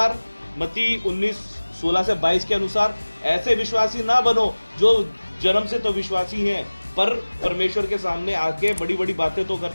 मती 19:16 से 22 के अनुसार ऐसे विश्वासी ना बनो जो जन्म से तो विश्वासी हैं पर परमेश्वर के सामने आके बड़ी बड़ी बातें तो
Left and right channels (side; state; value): both; inverted; correlation -1.00